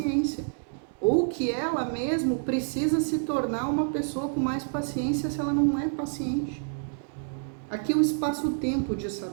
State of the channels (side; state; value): left; silent; digital silence